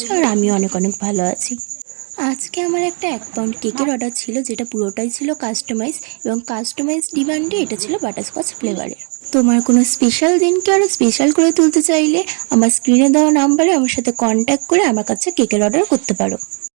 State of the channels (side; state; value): left; quieter; 38.2 dB